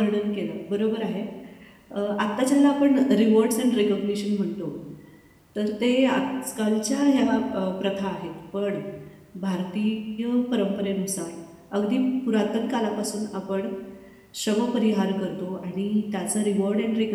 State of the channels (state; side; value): identical; both; correlation 1.00